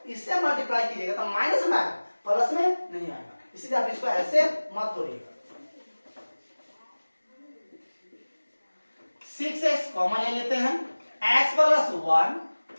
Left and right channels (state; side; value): inverted; both; correlation -1.00